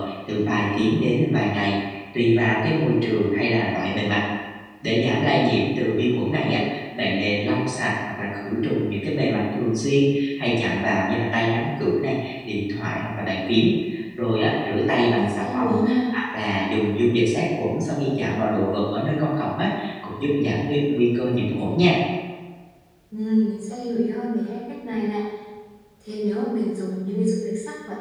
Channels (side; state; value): both; identical; correlation 1.00